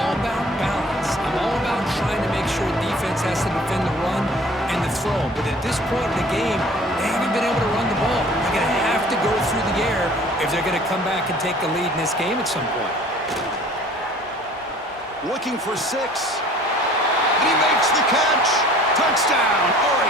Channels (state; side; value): normal; both; correlation 0.50